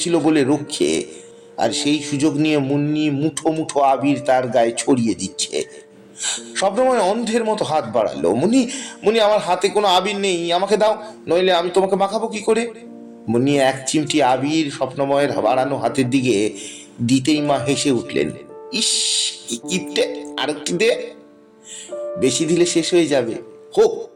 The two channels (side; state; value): both; identical; correlation 1.00